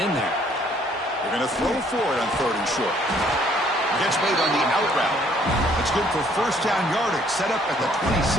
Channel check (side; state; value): both; normal; correlation 0.63